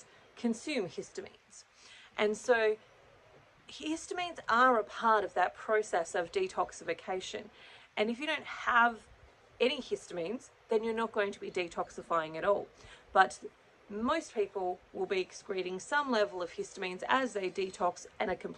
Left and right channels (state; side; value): identical; both; correlation 1.00